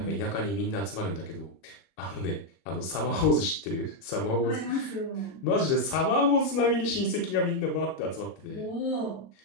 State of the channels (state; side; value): late; right; 30 ms